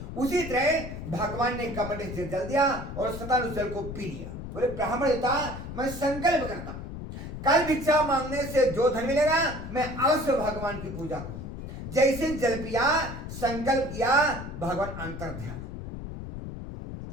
उसी तरह भगवान ने कमंडे से जल दिया और सता ने जल को पी लिया। बोले ब्राह्मण देवता मैं संकल्प करता हूं कल भिक्षा मांगने से जो धन मिलेगा मैं अवश्य भगवान की पूजा करूंगा। जैसे जल पिया संकल्प किया भगवान अंतर ध्यान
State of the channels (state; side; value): noise; left; rumble, 9 dB below the sound